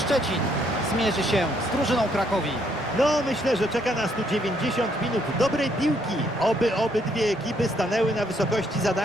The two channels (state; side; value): normal; both; correlation 0.70